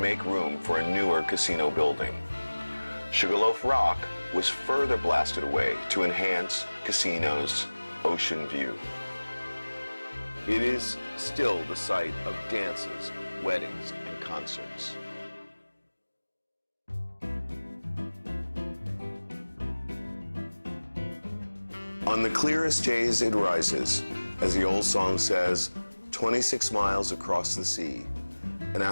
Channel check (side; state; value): both; inverted; correlation -1.00